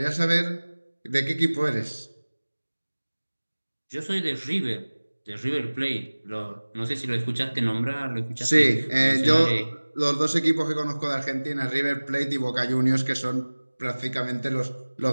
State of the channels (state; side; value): inverted; both; correlation -1.00